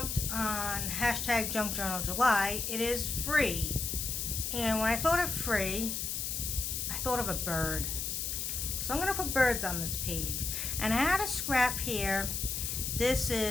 on hashtag junkjournaljuly, it is free. And when I thought of free, I thought of a bird. So I'm going to put birds on this page. And I had a scrap here. This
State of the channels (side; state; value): left; noise; hiss, 2 dB below the sound